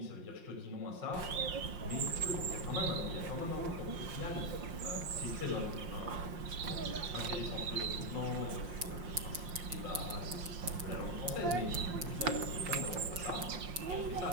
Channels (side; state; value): left; late; 5.7 ms